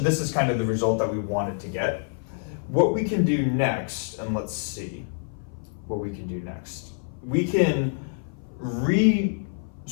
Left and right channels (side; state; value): right; silent; 55 dB below the other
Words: this is kind of the result that we wanted to get. What we can do next, and let's see what we can do next. We can